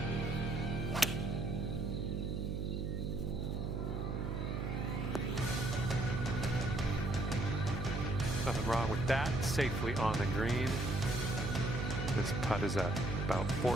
Nothing wrong with that. Safely on the green. This putt is at about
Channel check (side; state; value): right; noise; hum, 1 dB below the sound